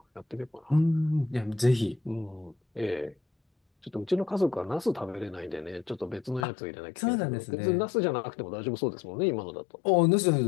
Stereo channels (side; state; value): right; drops out; at 6.5 s